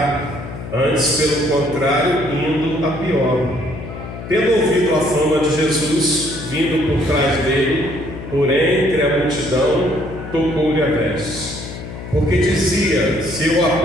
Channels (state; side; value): noise; left; hum, 11 dB below the sound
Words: antes pelo contrário, indo a pior. Tendo ouvido a fama de Jesus, vindo por trás dele, porém entre a multidão, tocou-lhe a veste, porque dizia: se eu